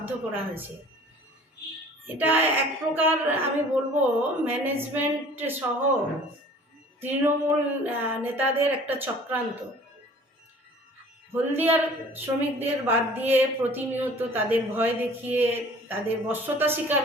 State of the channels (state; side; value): normal; both; correlation 0.49